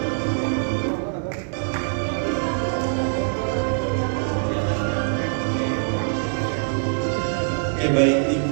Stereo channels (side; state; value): left; silent; digital silence